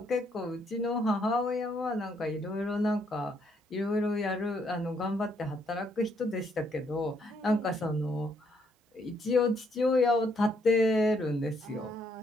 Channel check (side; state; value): both; normal; correlation 0.72